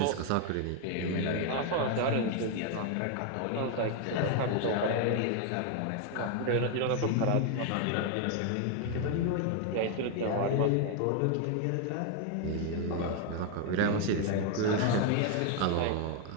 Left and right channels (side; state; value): both; different; correlation 0.01